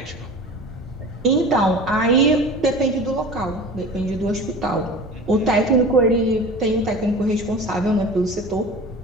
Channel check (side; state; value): both; normal; correlation 0.37